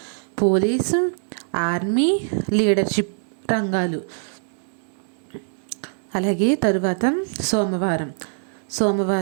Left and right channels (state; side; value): silent; left; 61 dB below the other